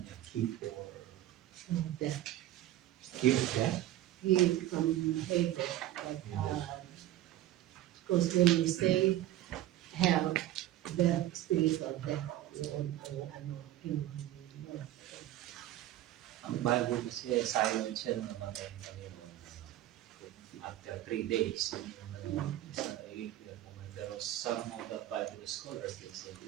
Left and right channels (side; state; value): left; quieter; 13.9 dB